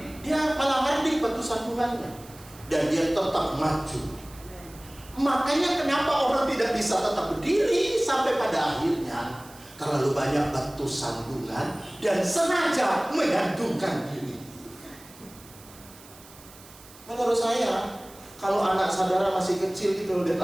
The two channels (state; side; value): noise; right; hiss, 21 dB below the sound